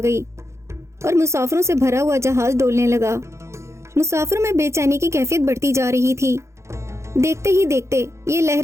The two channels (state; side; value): late; left; 0.14 ms